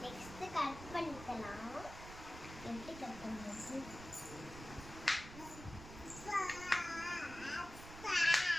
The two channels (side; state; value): right; noise; rumble, 13 dB below the sound